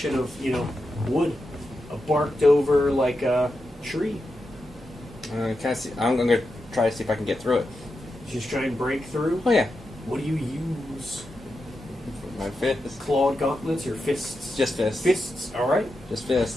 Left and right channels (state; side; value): normal; both; correlation 0.88